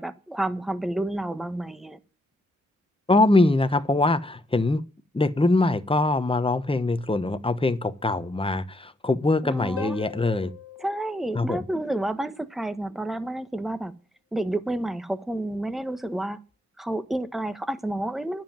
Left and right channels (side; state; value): both; normal; correlation 0.76